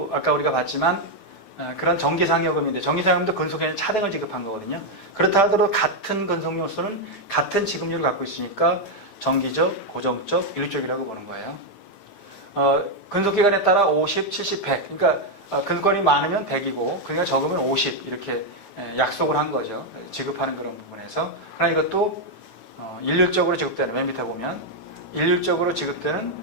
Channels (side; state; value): right; late; 9.2 ms